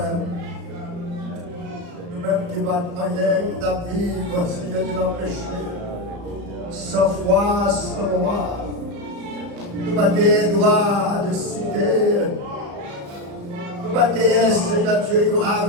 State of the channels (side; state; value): left; late; 35 ms